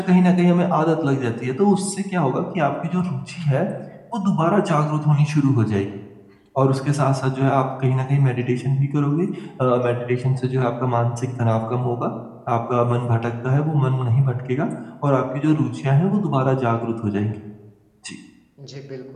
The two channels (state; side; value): identical; both; correlation 1.00